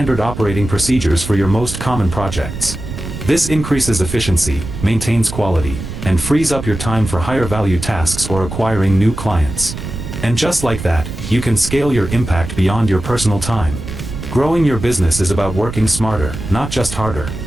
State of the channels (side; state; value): right; noise; rumble, 8 dB below the sound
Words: operating procedures for your most common projects. This increases efficiency, maintains quality, and frees up your time for higher value tasks or acquiring new clients. And just like that, you can scale your impact beyond your personal time. Growing your business is about working smarter, not just harder.